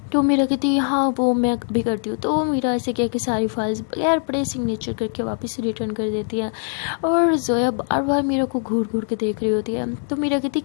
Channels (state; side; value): silent; right; digital silence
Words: तो मेरा कहती हाँ वो मैं अभी करती हूँ। तो मेरा ऐसे किया कि सारी फाइल्स बगैर पड़े सिग्नेचर करके वापस रिटर्न कर देती है और जोया बार बार मेरा को घूर घूर के देख रही होती है। तो मेरा कहती